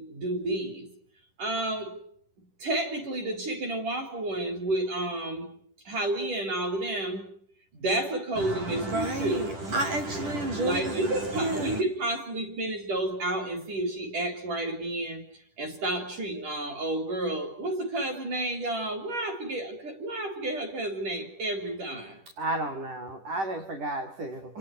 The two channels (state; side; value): late; left; 10 ms